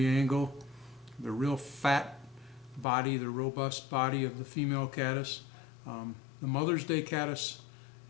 angle, the real fat body, the robust body of the female caddis. The Mother's Day caddis,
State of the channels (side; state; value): right; drops out; at 2.9 s